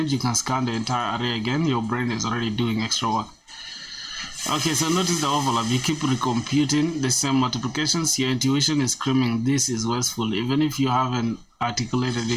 You can scan the entire array again. Your brain is already doing extra work. Okay, so notice the overlap. You keep recomputing the same multiplications. Your intuition is screaming, this is wasteful. Even if you haven't articulated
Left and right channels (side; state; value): both; identical; correlation 1.00